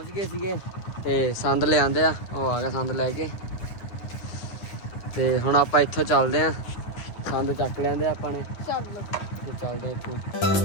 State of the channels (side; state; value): right; late; 9.7 ms